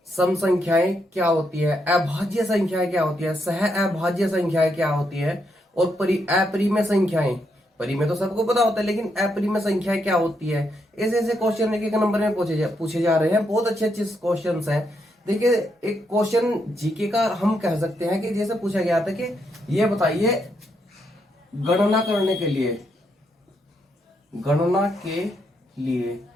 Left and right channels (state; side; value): normal; both; correlation 0.79